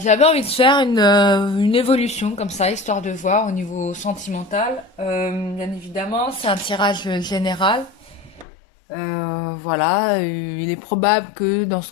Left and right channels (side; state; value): right; drops out; at 8.5 s